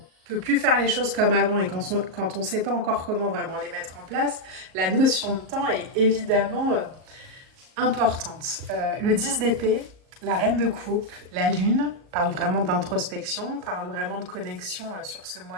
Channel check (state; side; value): late; left; 38 ms